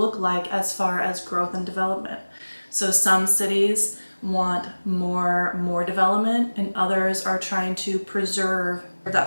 like as far as growth and development. So some cities want more development, and others are trying to preserve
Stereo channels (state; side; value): inverted; both; correlation -1.00